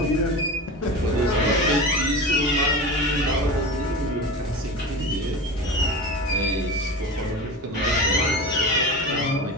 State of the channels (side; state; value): both; normal; correlation 0.29